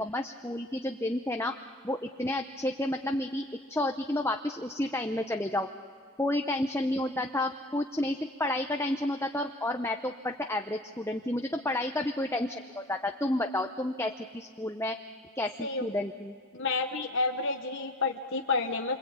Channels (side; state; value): both; normal; correlation 0.47